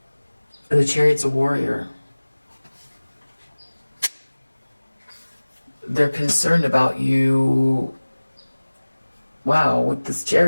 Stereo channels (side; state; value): both; inverted; correlation -1.00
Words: And the chariot's a warrior. They're concerned about you. Wow, with this